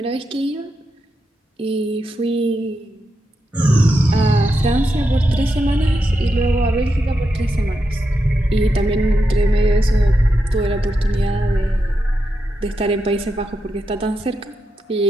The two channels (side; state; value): both; normal; correlation 0.86